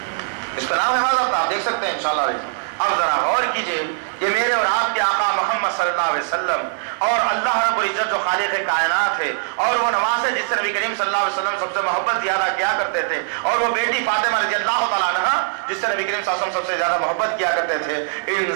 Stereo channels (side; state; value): left; silent; digital silence